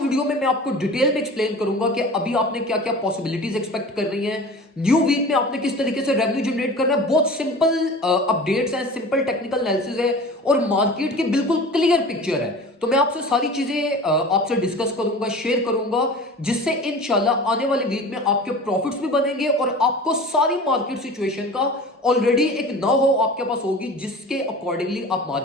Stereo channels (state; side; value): normal; both; correlation 0.38